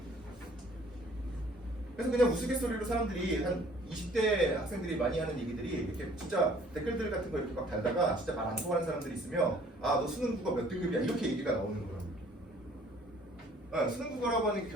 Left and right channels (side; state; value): both; normal; correlation 0.56